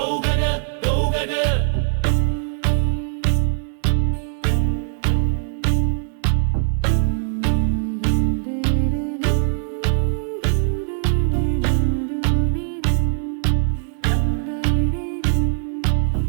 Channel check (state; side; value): silent; left; 62 dB below the other